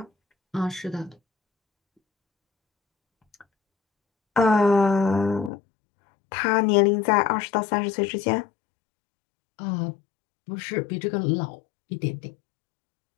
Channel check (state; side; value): drops out; right; at 5.5 s